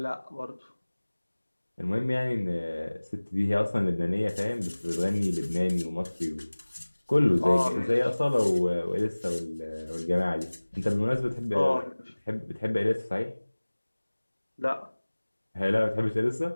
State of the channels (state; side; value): inverted; both; correlation -1.00